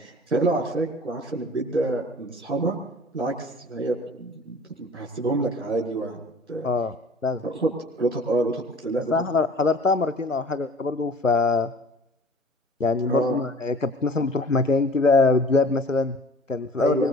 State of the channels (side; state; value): both; normal; correlation 0.47